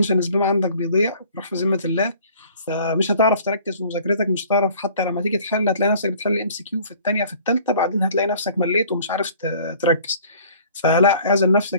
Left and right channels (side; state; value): both; inverted; correlation -0.52